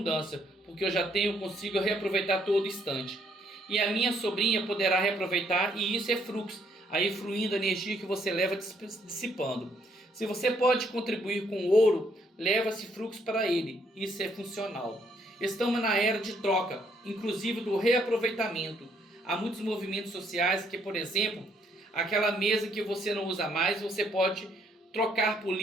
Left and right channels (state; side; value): normal; both; correlation 0.69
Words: porque eu já consigo reaproveitar todo instante. E a minha sobrinha poderá reaproveitar, e isso é fluxo. Aí fluindo a energia que você leva dissipando. Se você pode contribuir com ouro, leva esse fluxo para ele. Isso é funcional. Estamos na era de troca, inclusive do reaproveitamento. Há muitos movimentos sociais que, por exemplo, aquela mesa que você não usa mais, você pode trocar por